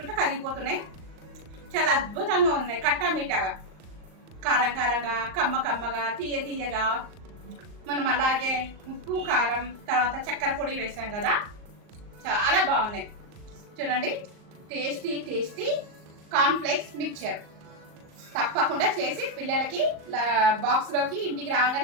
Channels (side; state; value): left; late; 38 ms